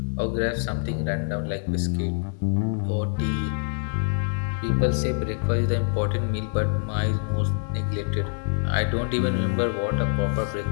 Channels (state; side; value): silent; right; 60 dB below the other